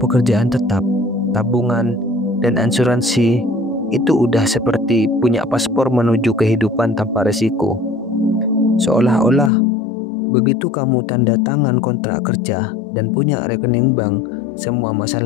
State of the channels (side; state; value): right; drops out; at 9.5 s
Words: tetap, tabungan, dan asuransi itu udah seperti punya paspor menuju kehidupan tanpa resiko. Seolah-olah begitu kamu tanda tangan kontrak kerja dan punya rekening bank, semua